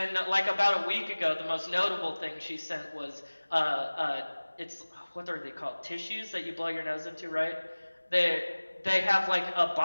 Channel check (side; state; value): both; inverted; correlation -1.00